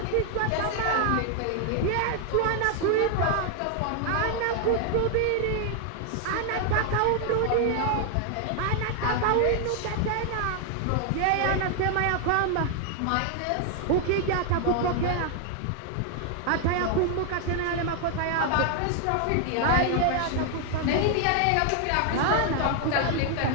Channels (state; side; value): different; both; correlation 0.00